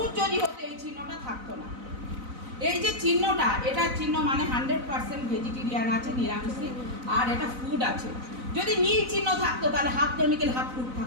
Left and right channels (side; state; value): left; late; 4.0 ms